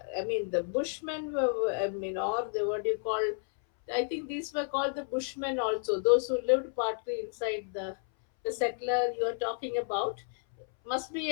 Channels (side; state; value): right; silent; 57 dB below the other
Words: Bushmen were, or the what do you call? I think these were called the Bushmen also. Those who lived partly inside the settler you are talking about must be